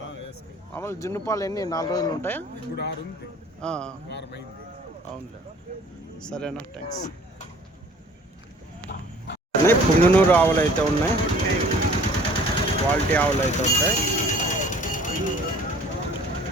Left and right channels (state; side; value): normal; both; correlation 0.51